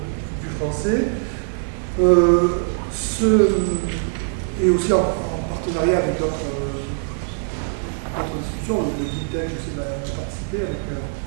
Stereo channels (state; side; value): silent; left; digital silence